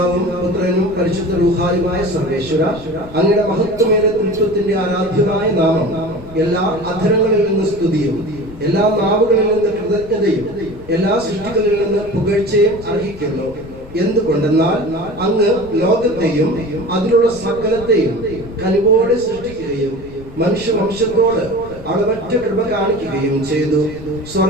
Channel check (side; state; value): left; noise; rumble, 17 dB below the sound